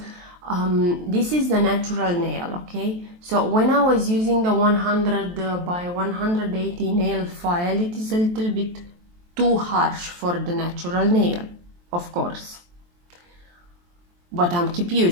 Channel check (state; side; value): late; left; 23 ms